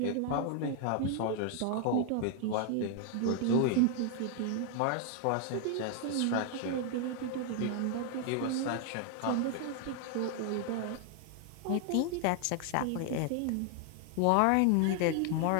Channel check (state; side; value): different; both; correlation 0.00